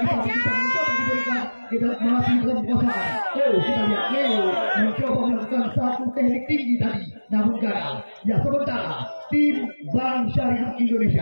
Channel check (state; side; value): inverted; both; correlation -1.00